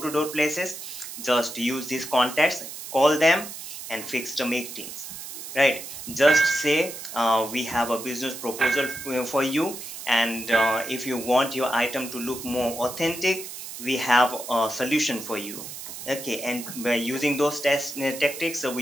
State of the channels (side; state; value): right; noise; hiss, 10 dB below the sound